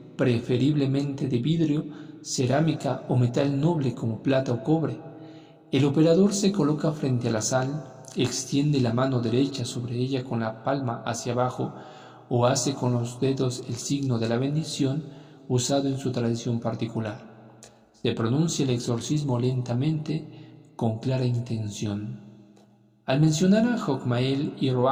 preferiblemente de vidrio, cerámica o metal noble como plata o cobre. El operador se coloca frente a la sal, extiende la mano derecha sobre ella con la palma hacia abajo o hace con los dedos el signo de la bendición usado en su tradición particular. Se pronuncia el exorcismo lentamente, con clara intención. Al mencionar a Jogmael y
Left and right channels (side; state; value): both; identical; correlation 1.00